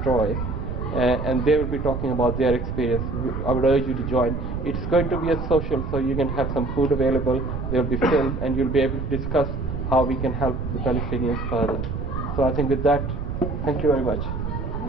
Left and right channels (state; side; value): noise; right; rumble, 4 dB below the sound